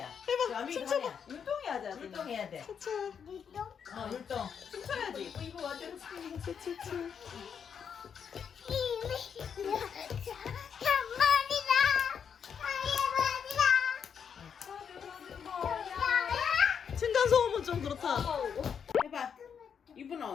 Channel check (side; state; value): right; quieter; 7.3 dB